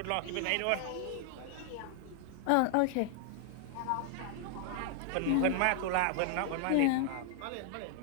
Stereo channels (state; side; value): different; both; correlation 0.00